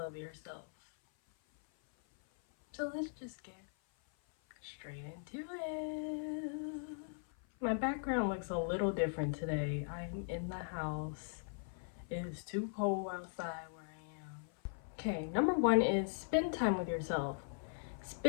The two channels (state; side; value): silent; right; 51 dB below the other